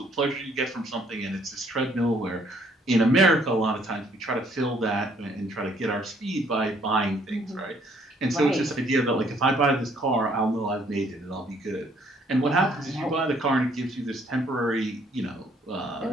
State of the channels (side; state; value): both; normal; correlation 0.64